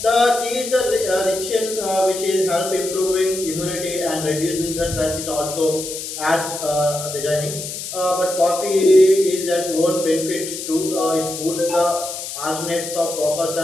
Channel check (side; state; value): left; noise; hiss, 7 dB below the sound